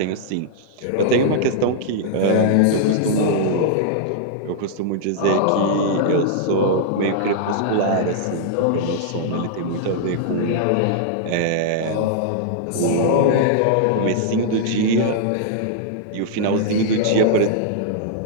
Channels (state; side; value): different; both; correlation -0.02